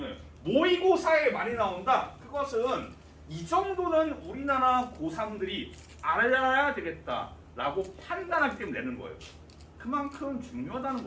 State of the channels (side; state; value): both; identical; correlation 1.00